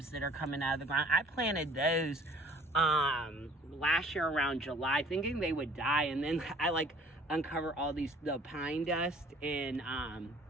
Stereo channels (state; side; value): normal; both; correlation 0.52